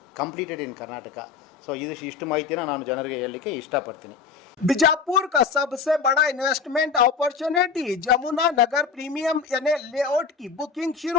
completed in Karnataka. So ಇಷ್ಟು ಮಾಹಿತಿಯನ್ನು ನಾನು ಜನರಿಗೆ ಹೇಳಲಿಕ್ಕೆ ಇಷ್ಟಪಡ್ತೀನಿ. बीजापुर का सबसे बड़ा इन्वेस्टमेंट अपॉर्चुनिटी जमुना नगर प्रीमियम यानी लेआउट की बुकिंग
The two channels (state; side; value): quieter; right; 5.5 dB